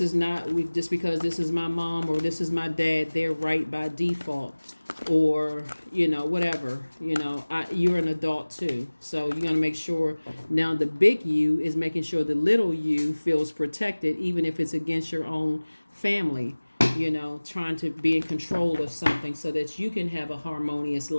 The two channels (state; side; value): inverted; both; correlation -1.00